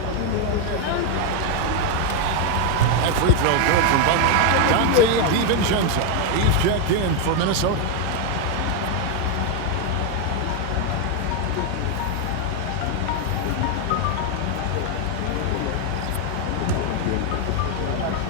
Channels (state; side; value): different; both; correlation 0.01